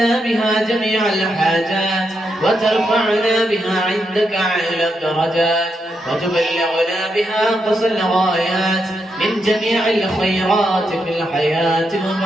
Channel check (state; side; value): normal; both; correlation 0.82